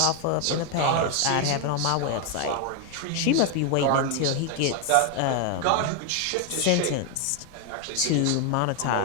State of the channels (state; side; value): different; both; correlation 0.01